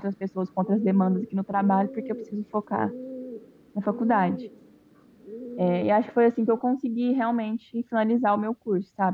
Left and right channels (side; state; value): both; identical; correlation 1.00